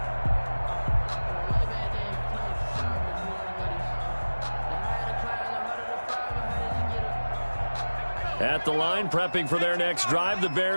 At the line, prepping for their next drive, the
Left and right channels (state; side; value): inverted; both; correlation -1.00